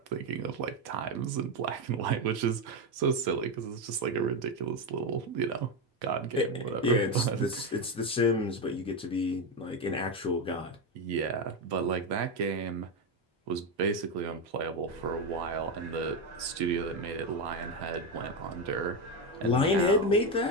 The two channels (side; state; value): both; normal; correlation 0.10